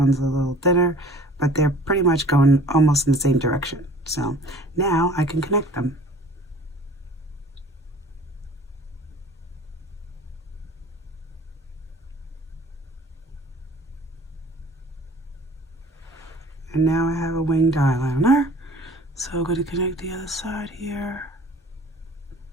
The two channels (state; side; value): normal; both; correlation 0.48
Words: a little thinner, but they're pretty much going almost in the same direction. So now I can connect them. And now I have a winged eyeliner. So I'm going to connect the other side here.